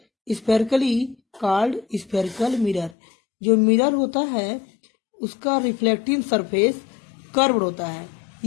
spherically called spherical mirror। जो मिरर होता है उसका रिफ्लेक्टिंग सरफेस कर्व्ड होता है।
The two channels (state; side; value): drops out; right; at 3.0 s